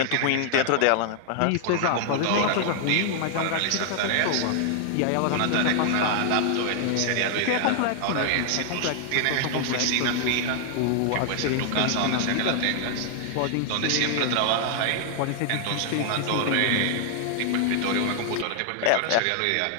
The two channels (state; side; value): different; both; correlation 0.00